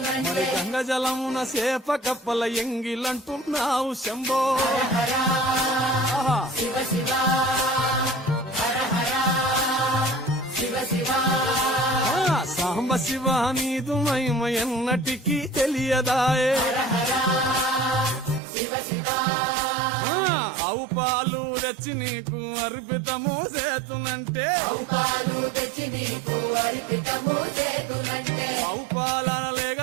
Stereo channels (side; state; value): left; drops out; at 18.4 s